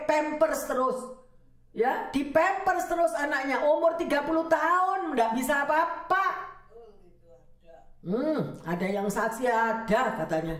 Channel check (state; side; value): identical; both; correlation 1.00